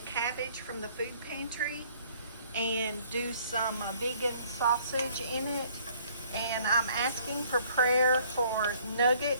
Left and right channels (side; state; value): both; inverted; correlation -0.60